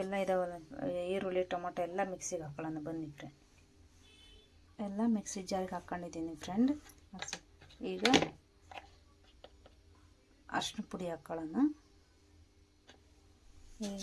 ಇದಾವಲ್ಲ, ಈರುಳ್ಳಿ, ಟೊಮೊಟೊ ಎಲ್ಲ ಮಿಕ್ಸಿಗೆ ಹಾಕೊಳ್ಳೋಣ. ಬನ್ನಿ ಫ್ರೆಂಡ್, ಎಲ್ಲ ಮಿಕ್ಸಿ ಜಾರಿಗೆ ಹಾಕ್ಕೊಂಡಿದ್ದೀನಿ ಫ್ರೆಂಡ್. ಈಗ ಅರಶಿನ ಪುಡಿ ಹಾಕ್ಕೊಳ್ಳೋಣ.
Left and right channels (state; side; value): identical; both; correlation 1.00